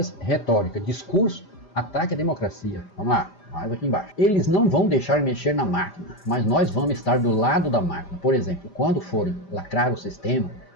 retórica, discurso, ataque à democracia. Vamos lá, mais aqui embaixo. Eles não vão deixar mexer na máquina, mas nós vamos estar do lado da máquina. Por exemplo, quando forem lacrar o sistema,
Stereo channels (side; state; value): right; late; 5.0 ms